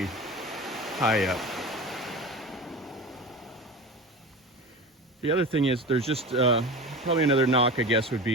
high up. The other thing is there's just probably another knock, I guess, would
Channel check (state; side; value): normal; both; correlation 0.30